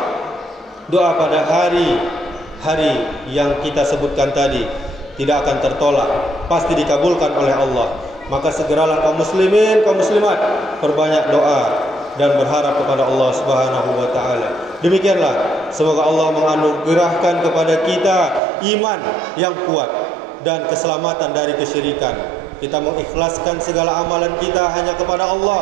Doa pada hari yang kita sebutkan tadi tidak akan tertolak, pasti dikabulkan oleh Allah. Maka segeralah kaum muslimin, kaum muslimat, perbanyak doa dan berharap kepada Allah Subhanahu wa taala. Demikianlah, semoga Allah menganugerahkan kepada kita iman yang kuat dan keselamatan dari kesyirikan. Kita mengikhlaskan segala amalan kita hanya kepada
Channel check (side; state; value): left; drops out; at 18.4 s